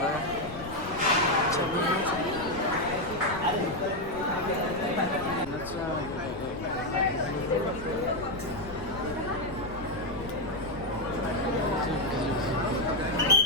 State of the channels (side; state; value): left; noise; rumble, 13 dB below the sound